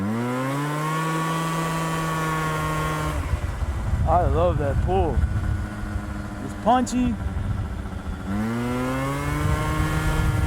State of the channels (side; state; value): both; identical; correlation 1.00